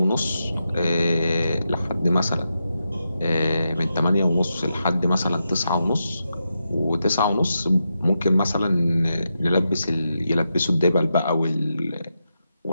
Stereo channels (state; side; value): inverted; both; correlation -0.86